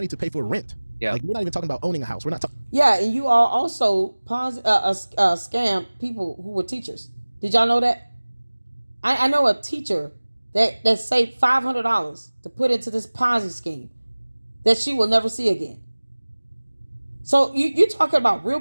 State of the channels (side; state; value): both; inverted; correlation -1.00